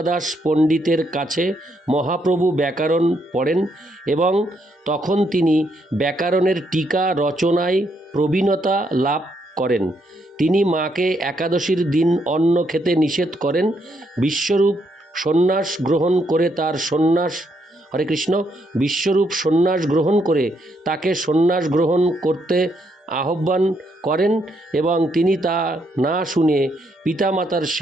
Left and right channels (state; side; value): normal; both; correlation 0.75